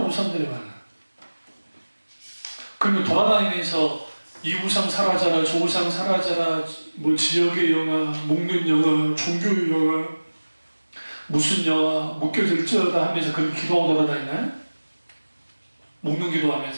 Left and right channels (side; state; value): both; inverted; correlation -1.00